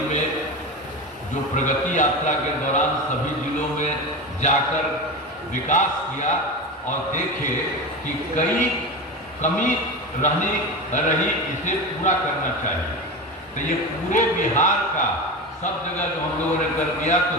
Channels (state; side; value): normal; both; correlation 0.24